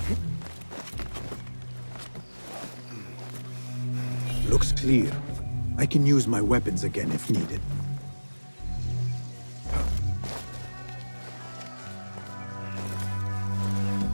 Looks clear. I can use my weapons again if needed.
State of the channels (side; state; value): both; inverted; correlation -1.00